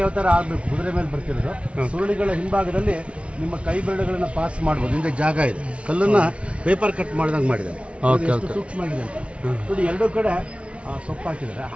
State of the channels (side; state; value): left; late; 0.061 ms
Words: ಅವತಾರ ಆಗಬೇಕು, ಕುದುರೆ ಮೇಲೆ ಬರ್ತಿರೋದು. ಸುರುಳಿಗಳ ಹಿಂಭಾಗದಲ್ಲಿ ನಿಮ್ಮ ಕೈ ಬೆರಳುಗಳನ್ನ ಪಾಸ್ ಮಾಡ್ಬೋದು. ಹಿಂದೆ ಜಾಗ ಇದೆ, ಕಲ್ಲನ್ನ ಪೇಪರ್ ಕಟ್ ಮಾಡಿದಂಗೆ ಮಾಡಿದ್ದಾರೆ. ಸೂಕ್ಷ್ಮ ಆಗಿದೆ ಅಂತ ನೋಡಿ. ಎರಡೂ ಕಡೆ ಸೊಪ್ಪು ಹಾಕಿದ್ದಾರೆ.